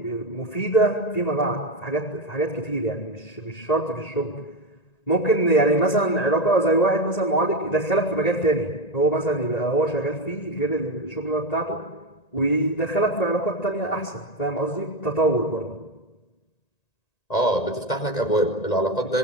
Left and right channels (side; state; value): right; late; 1.9 ms